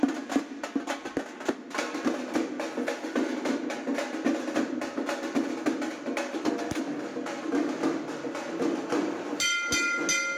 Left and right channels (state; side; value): identical; both; correlation 1.00